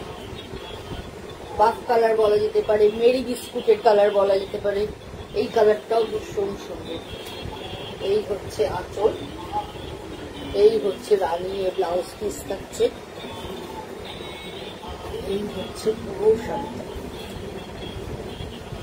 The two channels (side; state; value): both; identical; correlation 1.00